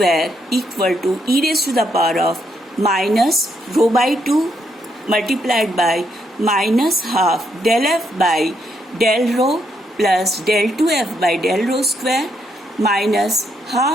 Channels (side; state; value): both; normal; correlation 0.76